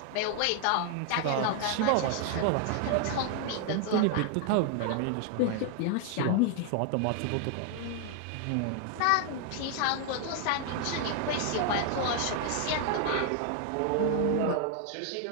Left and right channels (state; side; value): different; both; correlation 0.00